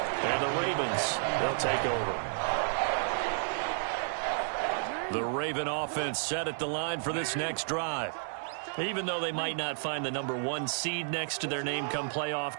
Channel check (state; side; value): silent; left; digital silence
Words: And the Ravens, they'll take over. The Raven offense set at the line for this next drive. Even though they might not find the #1 seed next to their name come playoff